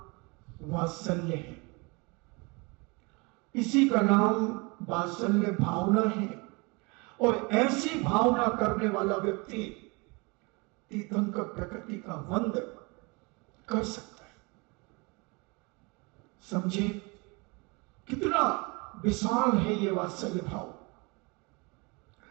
वात्सल्य है, इसी का नाम वात्सल्य भावना है। और ऐसी भावना करने वाला व्यक्ति तीर्थंकर प्रकृति का वंद कर सकता है। समझे कितना विशाल है ये वात्सल्य भाव।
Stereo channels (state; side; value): quieter; left; 28.3 dB